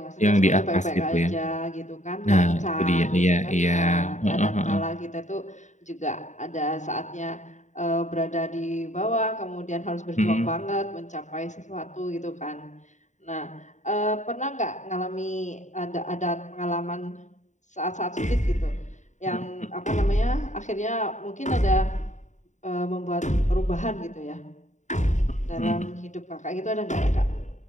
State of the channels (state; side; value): late; right; 0.35 ms